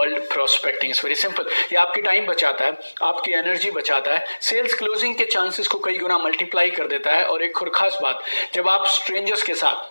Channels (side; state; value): both; inverted; correlation -1.00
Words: prospecting. Very simple. ये आपकी टाइम बचाता है, आपकी एनर्जी बचाता है, सेल्स क्लोजिंग के चांसेस को कई गुना मल्टीप्लाई कर देता है। और एक और खास बात, जब आप स्ट्रेंजर्स के